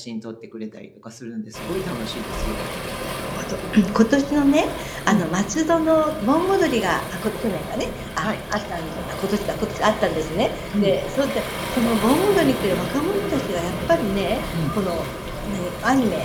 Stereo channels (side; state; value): both; identical; correlation 1.00